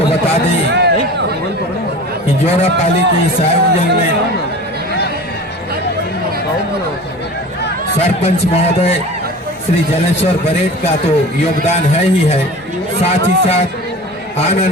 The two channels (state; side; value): normal; both; correlation 0.37